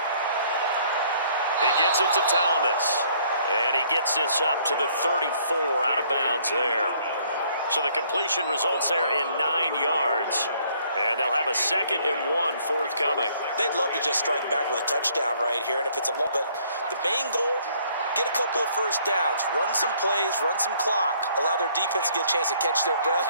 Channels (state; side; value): inverted; both; correlation -0.63